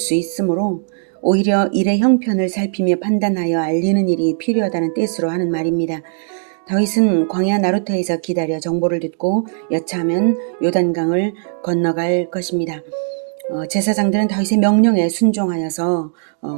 있으므로 오히려 일의 형편을 살피며 판단하여 알리는 일이 필요하다는 뜻으로 하는 말입니다. 다윗은 광야 나루터에서 기다려 정보를 듣고 여차하면 요단강을 건너갈 것입니다. 제사장들은 다윗의 명령에 순종하여서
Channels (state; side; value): silent; left; digital silence